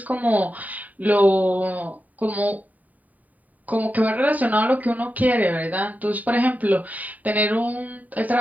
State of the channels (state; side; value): late; left; 0.075 ms